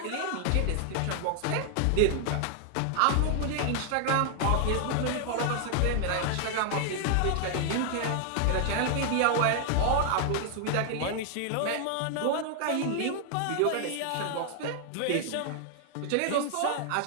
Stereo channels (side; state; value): both; different; correlation 0.00